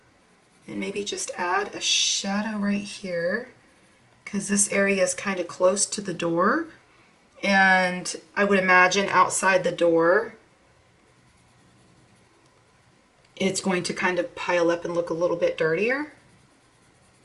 And maybe just add a shadow right here, because this area is kind of close to the door. And I would imagine outside the door, it's going to kind of pile up and look a little bit dirtier.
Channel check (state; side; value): identical; both; correlation 1.00